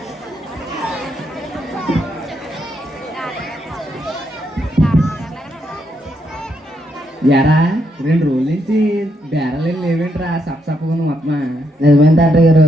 ఎరా 2 రోజుల నుంచి బేరాలు లేవేంట్రా? సప్సప్పగా మొత్తం. నిజమైన డాక్టర్ గారు,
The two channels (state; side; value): normal; both; correlation 0.77